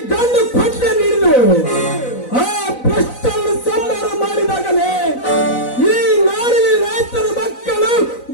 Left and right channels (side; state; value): right; late; 4.0 ms